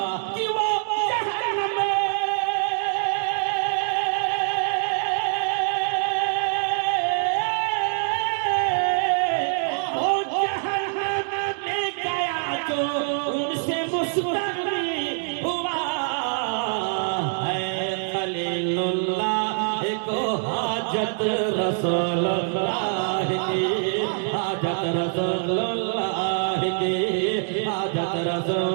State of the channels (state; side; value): silent; left; digital silence